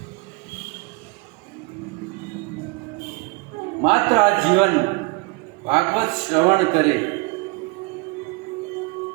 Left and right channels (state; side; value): quieter; left; 26.1 dB